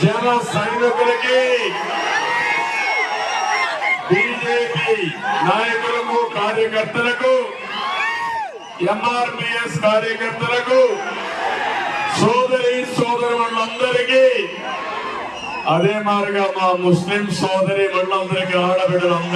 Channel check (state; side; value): identical; both; correlation 1.00